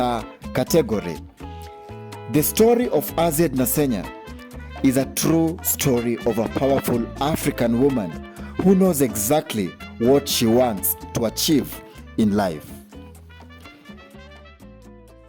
category. The story of Azziad Nasenya is a true story of a powerful African woman who knows exactly what she wants to achieve in life.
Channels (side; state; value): both; identical; correlation 1.00